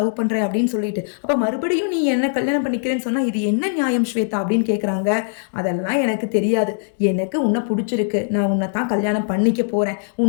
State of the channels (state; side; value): silent; right; digital silence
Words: பண்றேன் அப்படின்னு சொல்லிட்டு, அப்ப மறுபடியும் நீ என்ன கல்யாணம் பண்ணிக்கிறேன்னு சொன்னா இது என்ன நியாயம் ஸ்வேதா அப்படின்னு கேட்குறாங்க. அதெல்லாம் எனக்கு தெரியாது, எனக்கு உன்னை பிடிச்சிருக்கு, நான் உன்னை தான் கல்யாணம் பண்ணிக்க போறேன்,